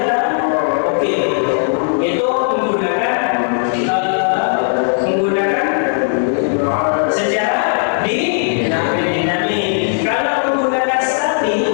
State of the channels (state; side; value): silent; right; digital silence